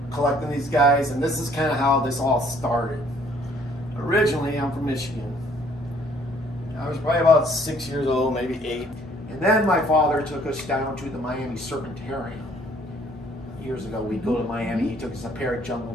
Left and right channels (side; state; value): both; normal; correlation 0.61